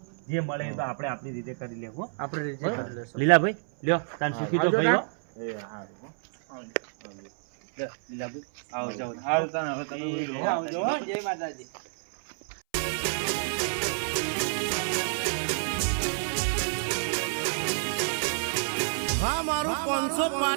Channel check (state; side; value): silent; left; 59 dB below the other